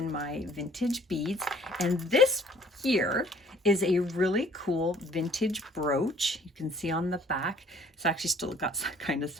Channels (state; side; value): normal; both; correlation 0.56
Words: my vintage beads. And this here is a really cool vintage brooch. You can see on the back, it's actually still got kind of